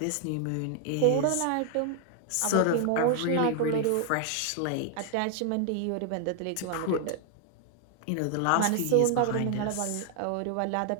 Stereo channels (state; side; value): different; both; correlation 0.00